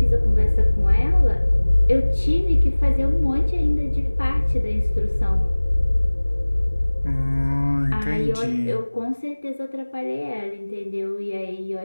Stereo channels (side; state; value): both; inverted; correlation -1.00